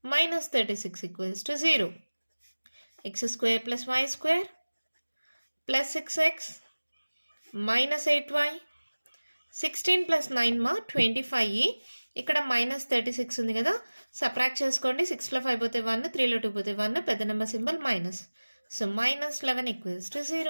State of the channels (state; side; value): inverted; both; correlation -1.00